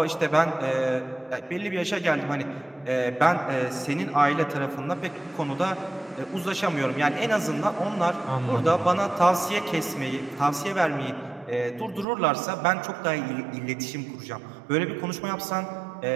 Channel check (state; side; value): drops out; left; at 12.1 s